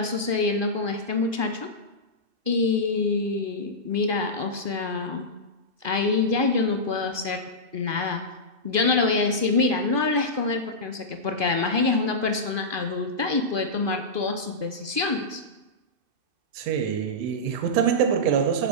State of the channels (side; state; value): left; late; 2.5 ms